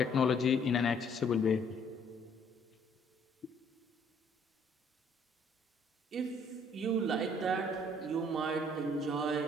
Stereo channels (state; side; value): normal; both; correlation 0.62